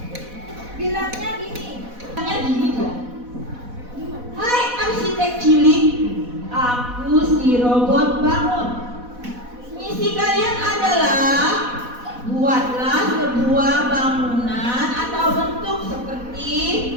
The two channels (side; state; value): left; late; 4.1 ms